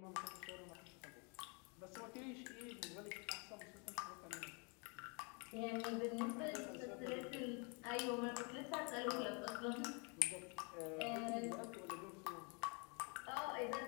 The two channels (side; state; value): right; quieter; 34.1 dB